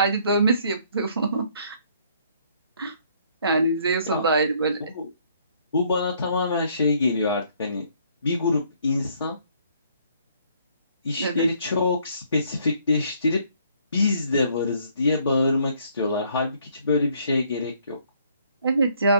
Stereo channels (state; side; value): inverted; both; correlation -0.65